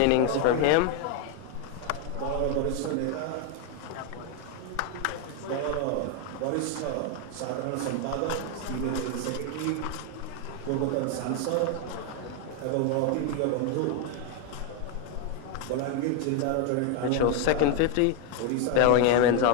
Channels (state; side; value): different; both; correlation 0.01